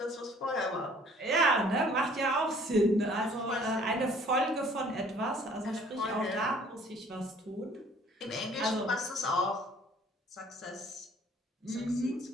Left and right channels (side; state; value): both; normal; correlation 0.56